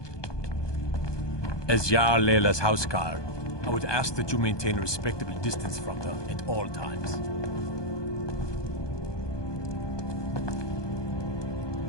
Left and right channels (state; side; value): late; right; 1.2 ms